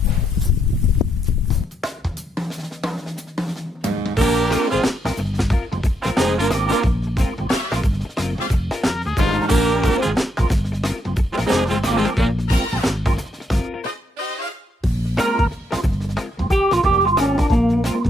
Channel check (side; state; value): both; normal; correlation 0.79